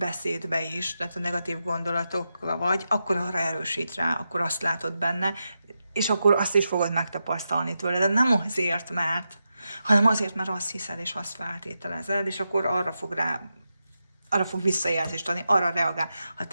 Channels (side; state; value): both; inverted; correlation -0.88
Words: is, tehát a negatív gondolatokra vagy, akkor arra erősít rá, akkor azt látod benne, és akkor azt is fogod megtapasztalni tőle. De nem azért, hanem azért, mert azt hiszed, és azt feltételezed, és akkor arra fog visszajelzést adni, arra reagál. Ha